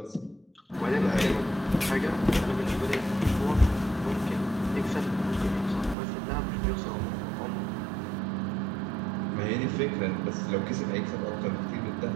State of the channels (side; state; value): left; drops out; at 6.0 s